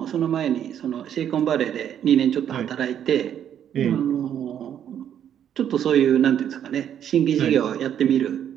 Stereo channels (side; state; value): left; quieter; 9.6 dB